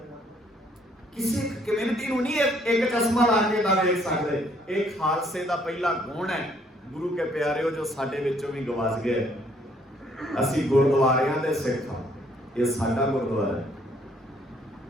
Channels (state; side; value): normal; both; correlation 0.65